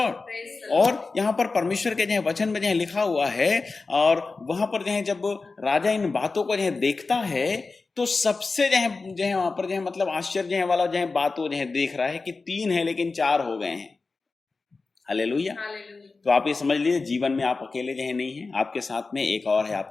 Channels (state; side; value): quieter; right; 4.0 dB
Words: और यहाँ पर परमेश्वर के जो है वचन में जो है लिखा हुआ है, और वहां पर जो है जब राजा इन बातों को जो है देखता है तो सबसे जो है वहां पर जो है मतलब आश्चर्य वाला जो है बात वो जो है देख रहा है कि 3 है लेकिन 4 हो गए हैं। हालेलुया। तो आप ये समझ लीजिए, जीवन में आप अकेले जो है नहीं है, आपके साथ में एक और है